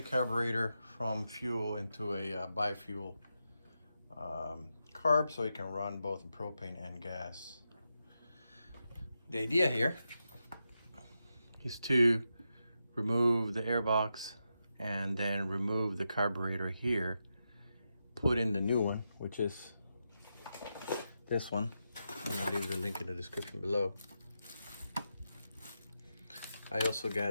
carburetor from fuel into a bi-fuel carb so it can run both propane and gas. The idea here is to remove the airbox and then remove the carburetor here, put in the new one, which is this one. I'm gonna leave the link in the description below. I also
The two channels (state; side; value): inverted; both; correlation -0.87